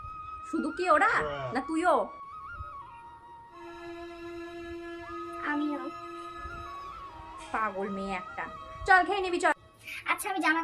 শুধু কি ওরা না তুইও? আমিও। পাগল মেয়ে একটা। চল খেয়ে নিবি চল। আচ্ছা আমি জামা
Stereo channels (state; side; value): identical; both; correlation 1.00